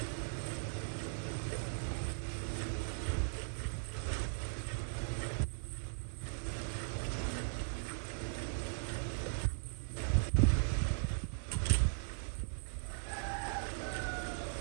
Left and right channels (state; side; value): silent; left; digital silence